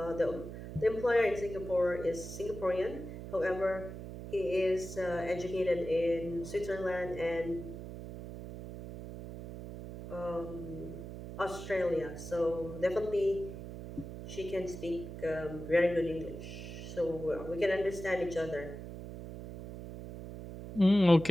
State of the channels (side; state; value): right; noise; hum, 10 dB below the sound